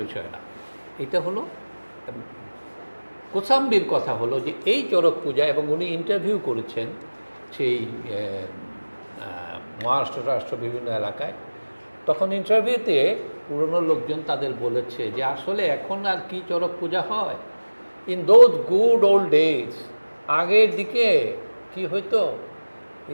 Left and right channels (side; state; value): both; inverted; correlation -1.00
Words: বিষয় না। এটা হলো কোসাম্বির কথা হলো যে এই চড়ক পূজা, এবং উনি ইন্টারভিউ করেছেন সেই মহারাষ্ট্র বিভিন্ন এলাকায়। তখন ইন্টারভিউতে পুরনো লোকজন তাদের বলেছে যে আসলে এখন আর কি চড়ক পূজা হয়, in those good old days, আগের দিকে কি হইতো,